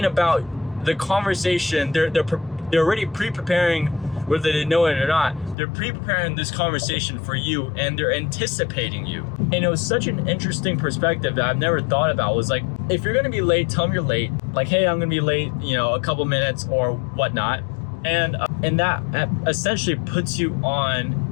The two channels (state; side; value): drops out; right; at 5.6 s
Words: about the conversation. They're already pre-preparing, whether they know it or not. They're pre-preparing this conversation for you, and they're anticipating you. And it was such an interesting perspective that I've never thought about. Was like, if you're gonna be late, tell them you're late. Like, hey, I'm gonna be late, a couple minutes or whatnot. And that essentially puts you